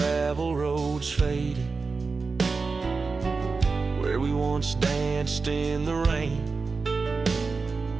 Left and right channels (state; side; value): quieter; left; 4.3 dB